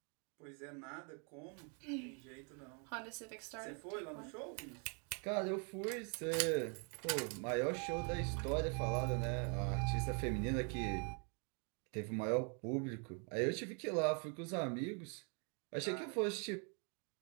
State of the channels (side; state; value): left; quieter; 38.9 dB